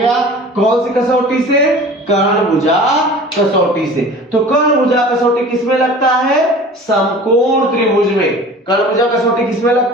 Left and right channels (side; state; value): both; normal; correlation 0.42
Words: कौन सी कसौटी से? कर्ण भुजा कसौटी से। तो कर्ण भुजा कसौटी किसमें लगता है? समकोण त्रिभुज में। कर्ण भुजा कसौटी किसमें